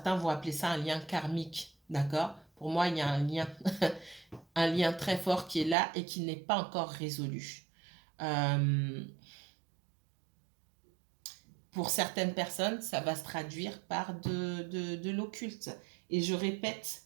vont appeler ça un lien karmique, d'accord? Pour moi, il y a un lien, un lien très fort qui est là et qui n'est pas encore résolu. Pour certaines personnes, ça va se traduire par de l'occulte. Et je répète,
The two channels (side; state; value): left; drops out; at 5.8 s